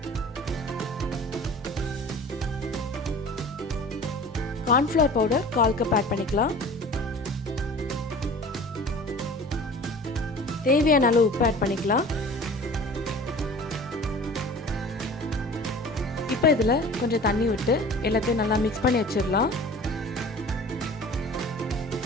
கார்ன்ஃப்ளவர் பவுடர் 1/4 கப் ஆட் பண்ணிக்கலாம். தேவையான அளவு உப்பு ஆட் பண்ணிக்கலாம். இப்போ இதில் கொஞ்சம் தண்ணி விட்டு எல்லாத்தையும் நல்லா மிக்ஸ் பண்ணி வச்சிடலாம்.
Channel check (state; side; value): normal; both; correlation 0.42